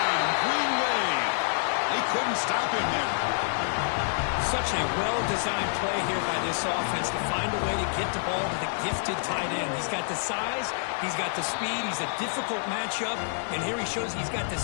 Green Wave. They couldn't stop him there. Such a well-designed play here by this offense to find a way to get the ball to the gifted tight end. He's got the size, he's got the speed, he's a difficult matchup, and here he shows he's got the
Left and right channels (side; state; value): right; silent; digital silence